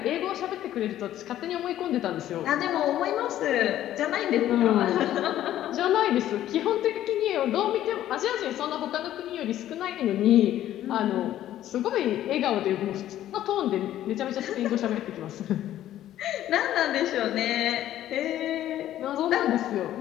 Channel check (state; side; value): quieter; right; 12.6 dB